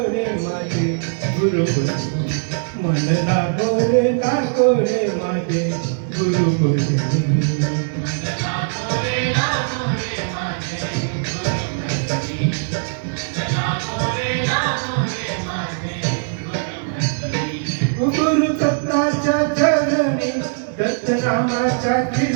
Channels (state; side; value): silent; left; 64 dB below the other